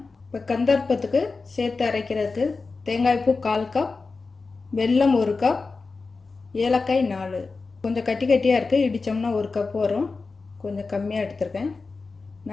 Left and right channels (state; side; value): quieter; right; 4.1 dB